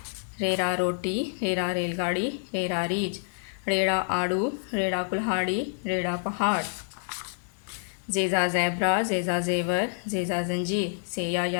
रेरा रोटी, रेरा रेलगाड़ी, रेरा रीछ, रेड़ा आड़ू, रेड़ा कुल्हाड़ी, रेड़ा पहाड़। जेजा ज़ेब्रा, जेजा ज़ेवर, जेजा जंजीर, सेया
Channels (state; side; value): silent; right; digital silence